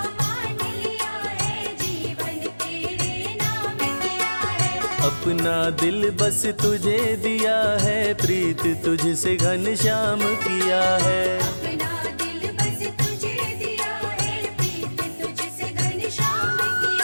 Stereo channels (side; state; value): both; inverted; correlation -1.00